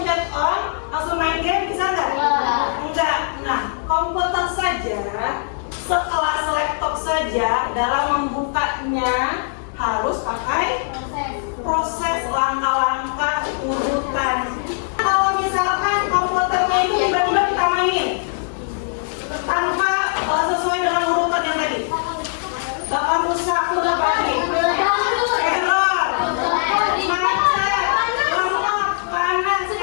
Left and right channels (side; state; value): right; silent; digital silence